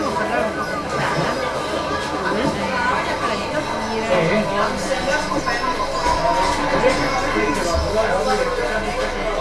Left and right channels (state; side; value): identical; both; correlation 1.00